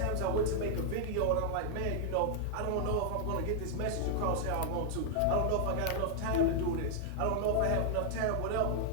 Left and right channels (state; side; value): different; both; correlation -0.01